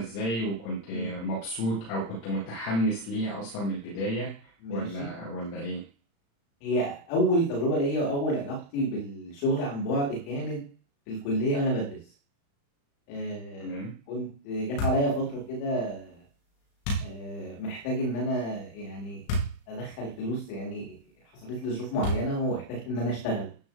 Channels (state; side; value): late; right; 35 ms